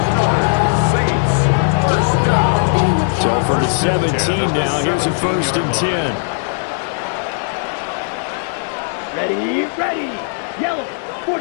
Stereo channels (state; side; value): silent; right; digital silence